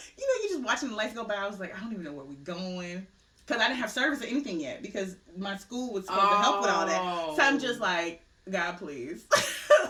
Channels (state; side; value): identical; both; correlation 1.00